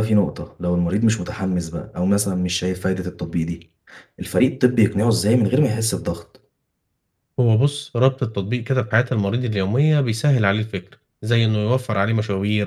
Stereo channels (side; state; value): both; identical; correlation 1.00